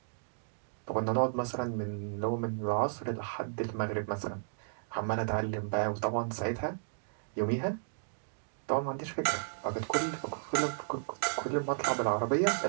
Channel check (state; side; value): silent; left; digital silence